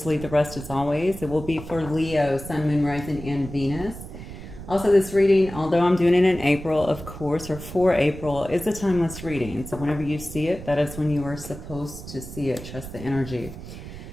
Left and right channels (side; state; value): right; noise; rumble, 12 dB below the sound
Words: leave the rest as always. It will be for Leo, Sun, Moon, Rising, and Venus. Also, this reading, although I'm doing it in April, of course, or for April, is a timeless reading. So whenever you see it, that is when you are supposed to see it. Trust the energy.